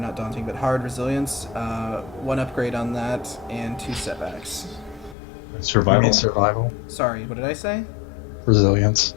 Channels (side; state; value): right; drops out; at 5.2 s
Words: hard resilience. 1 upgrade on that, and 2 setbacks. Survival. Survival. Sorry, what did I say? Resilience.